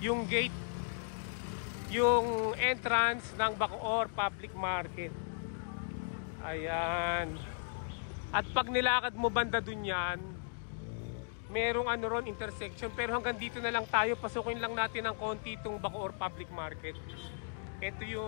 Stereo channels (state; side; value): silent; right; digital silence